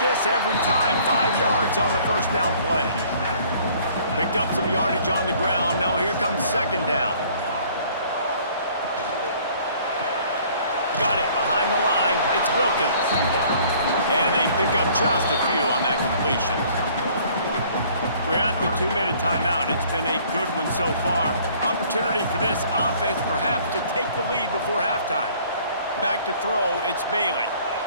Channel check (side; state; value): both; inverted; correlation -0.56